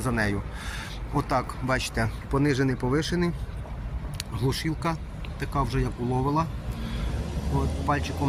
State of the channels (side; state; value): both; identical; correlation 1.00